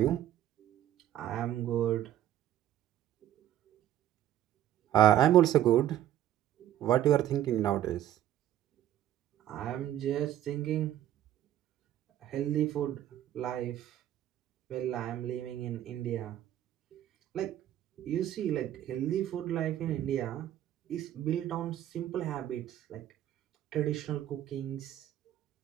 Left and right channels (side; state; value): left; quieter; 12.1 dB